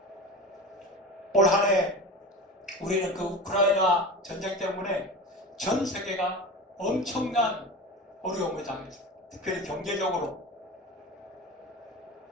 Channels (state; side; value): normal; both; correlation 0.30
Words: 올 한 해 우리는 그 우크라이나 전쟁 때문에 전 세계가 엄청난 어려움을 당했어요. 특별히 경제적으로